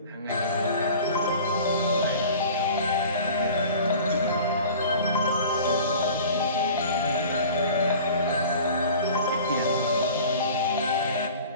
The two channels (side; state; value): both; inverted; correlation -0.42